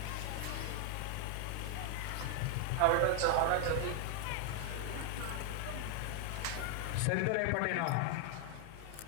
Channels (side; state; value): both; different; correlation 0.00